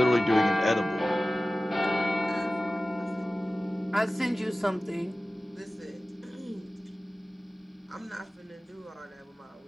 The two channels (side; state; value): both; normal; correlation 0.97